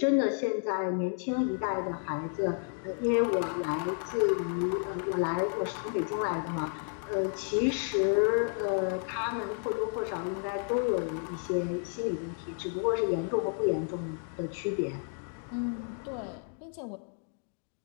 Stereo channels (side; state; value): right; silent; 57 dB below the other